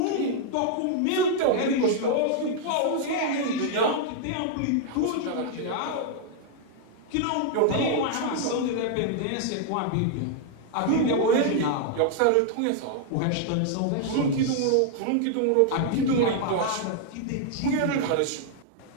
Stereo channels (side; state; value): both; different; correlation -0.01